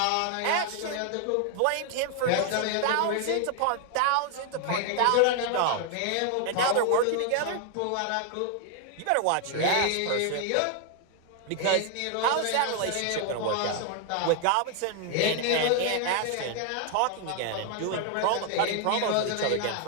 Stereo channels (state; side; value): different; both; correlation 0.00